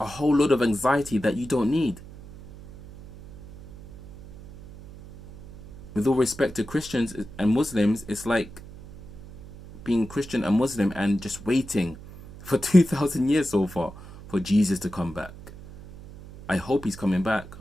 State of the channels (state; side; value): noise; right; hum, 17 dB below the sound